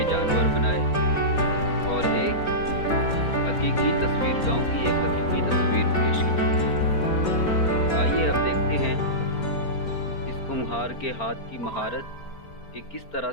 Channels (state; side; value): late; right; 4.4 ms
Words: जानवर बनाए और एक हकीकी तस्वीर, गांव की एक हकीकी तस्वीर पेश की। आइए अब देखते हैं इस कुम्हार के हाथ की महारत कि किस तरह